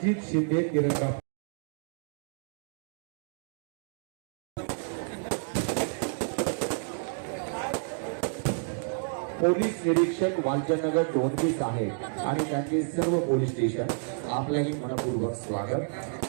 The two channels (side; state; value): left; silent; digital silence